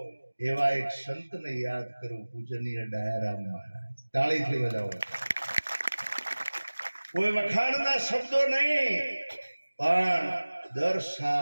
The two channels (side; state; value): both; inverted; correlation -1.00